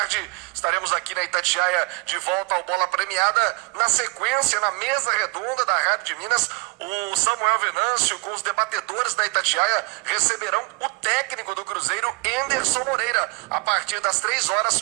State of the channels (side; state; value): left; quieter; 28.7 dB